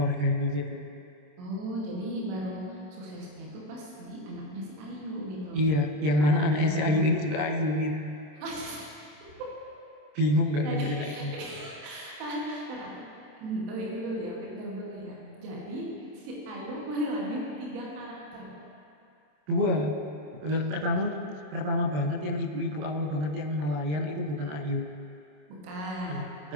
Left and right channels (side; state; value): left; late; 27 ms